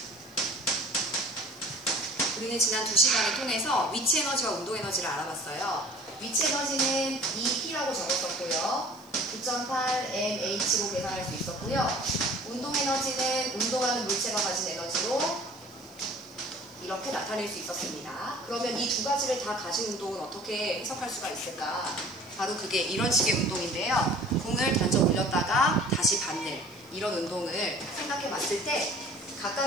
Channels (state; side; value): noise; right; hiss, 28 dB below the sound